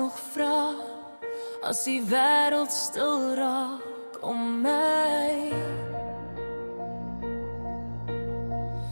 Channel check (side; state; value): both; inverted; correlation -1.00